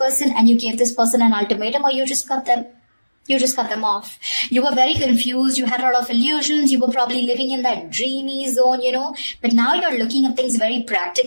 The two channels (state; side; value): inverted; both; correlation -1.00